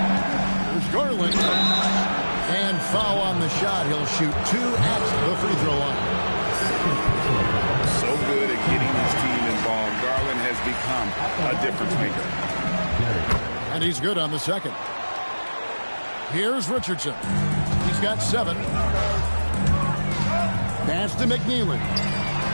Here's Garland. And foul on the shot. He'll shoot 2 at the free throw line. So good at getting his team involved. Garland has become a difference maker. And he's good on the second. Here's Richardson. He's got 7. Pass to McNeely.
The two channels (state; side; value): inverted; both; correlation -1.00